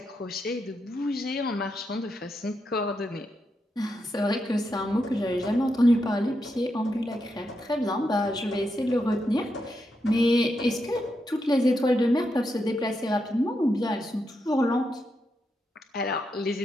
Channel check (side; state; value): both; normal; correlation 0.84